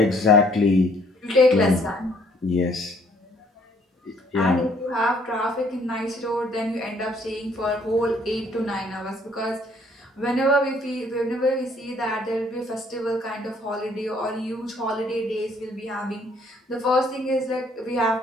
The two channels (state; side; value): normal; both; correlation 0.63